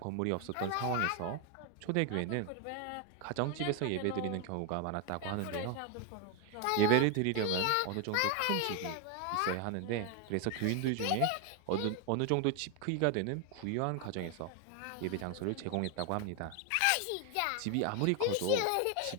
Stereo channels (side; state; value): both; different; correlation 0.01